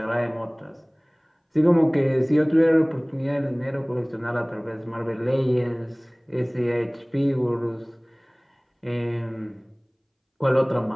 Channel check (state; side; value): identical; both; correlation 1.00